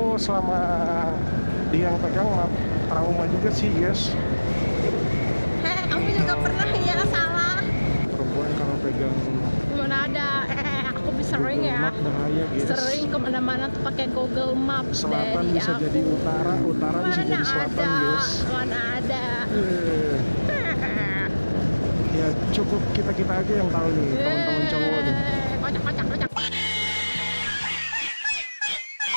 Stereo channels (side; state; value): both; inverted; correlation -1.00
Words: selama dia yang pegang trauma juga sih, guys. Kamu juga pernah ya salah. Perempuan kalau pegang Mana ada, aku bisa sering Google ya. Map bahaya, guys. Sering kemana-mana tuh pakai Google Map. Selatan dari bisa aku. jadi utara, utara bisa jadi selatan, guys. Mana ada. Ya cukup kita aja yang tahu nih, teman-teman cowok nih. Kocak.